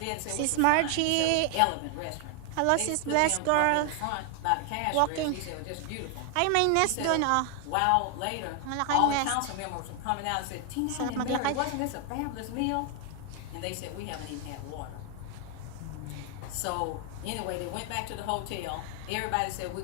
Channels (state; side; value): different; both; correlation 0.00